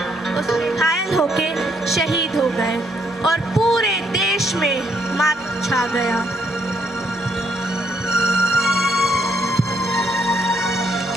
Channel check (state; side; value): normal; both; correlation 0.72